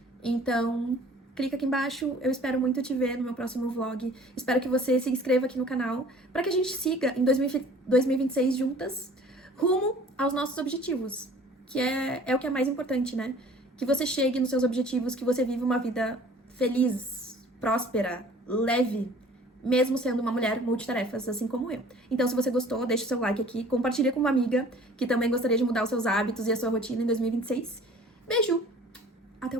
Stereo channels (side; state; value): both; normal; correlation 0.50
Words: Então, clica aqui embaixo, eu espero muito te ver no meu próximo vlog. Espero que você se inscreva aqui no canal para que a gente siga em 2026 juntas, rumo aos nossos objetivos, que é o que é mais importante, né? Que você chegue nos seus objetivos, que você viva uma vida feliz, próspera, leve, mesmo sendo uma mulher multitarefas, assim como eu. Então, se você gostou, deixa o seu like aqui, compartilha com uma amiga que também gostaria de mudar os seus hábitos e a sua rotina em 2026. Beijo! Até o